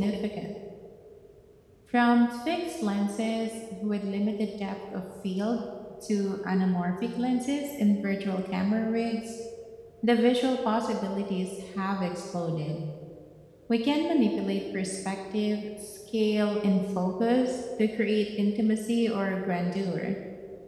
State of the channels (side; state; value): both; identical; correlation 1.00